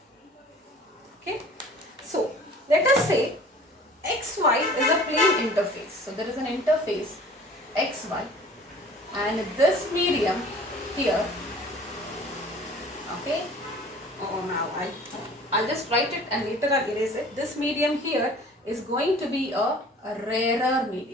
Okay, so let us say xy is a plane interface. So there is an interface xy, and this medium here, okay, now I'll just write it and later I'll erase it. This medium here is going to be a rarer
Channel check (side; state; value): both; normal; correlation 0.47